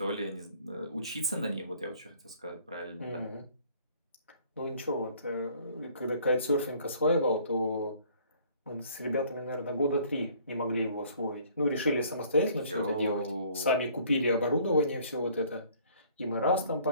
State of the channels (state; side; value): inverted; both; correlation -0.57